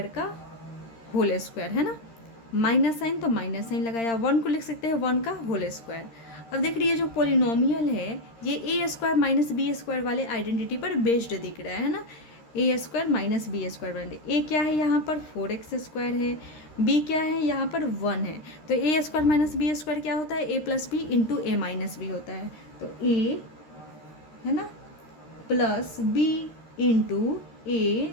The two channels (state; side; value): late; right; 13 ms